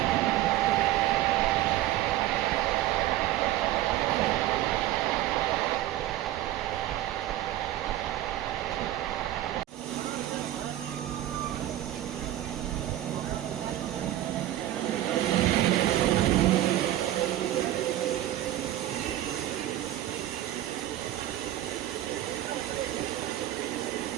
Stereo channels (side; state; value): left; quieter; 13.9 dB